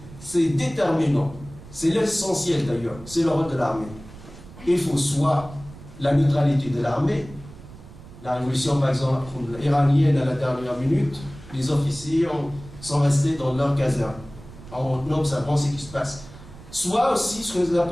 déterminant. C'est l'essentiel d'ailleurs. C'est le rôle de l'armée. Il faut soit la neutralité de l'armée. La révolution, par exemple, iranienne à la dernière minute, les officiers sont restés dans leur caserne en observant ce qui se passe. Soit aussi ce que nous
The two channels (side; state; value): right; noise; rumble, 18 dB below the sound